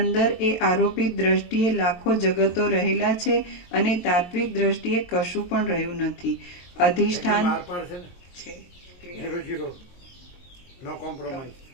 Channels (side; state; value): right; late; 23 ms